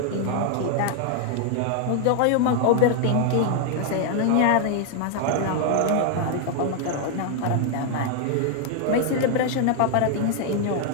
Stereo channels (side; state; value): both; different; correlation 0.00